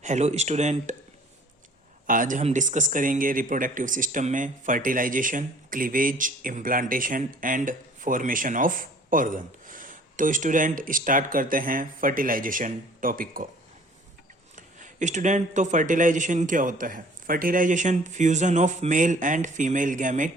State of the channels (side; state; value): both; normal; correlation 0.52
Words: Hello student. आज हम discuss करेंगे रिप्रोडक्टिव सिस्टम में fertilisation, cleavage, implantation and formation of organ. तो स्टूडेंट स्टार्ट करते हैं फर्टिलाइजेशन टॉपिक को। स्टूडेंट, तो फर्टिलाइजेशन क्या होता है? Fertilisation fusion of male and female